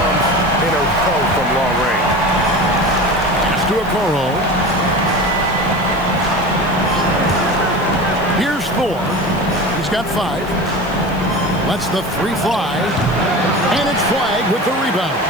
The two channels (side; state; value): right; noise; hiss, 23 dB below the sound